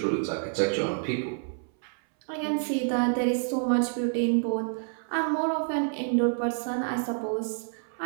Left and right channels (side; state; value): left; silent; 59 dB below the other